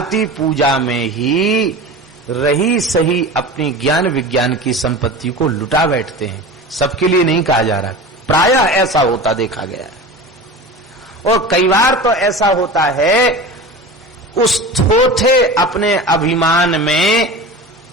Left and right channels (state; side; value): normal; both; correlation 0.32